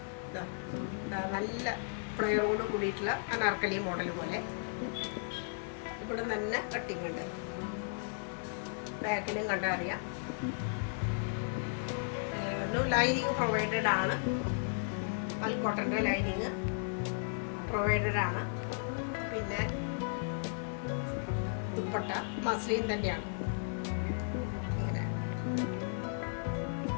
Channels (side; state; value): right; silent; 54 dB below the other